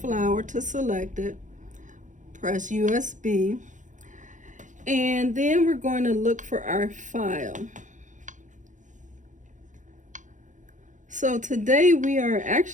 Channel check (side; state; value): left; late; 0.36 ms